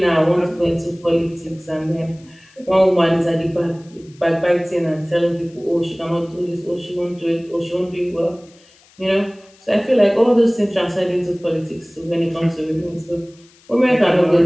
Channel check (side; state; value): left; noise; hiss, 29 dB below the sound